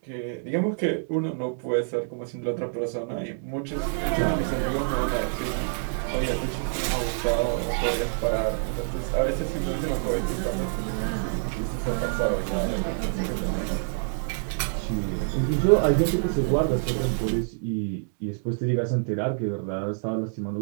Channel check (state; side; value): silent; left; digital silence